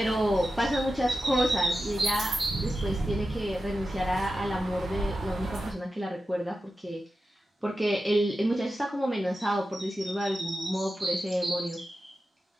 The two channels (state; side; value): normal; both; correlation 0.92